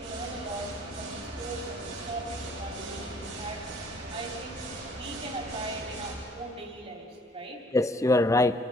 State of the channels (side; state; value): both; normal; correlation 0.58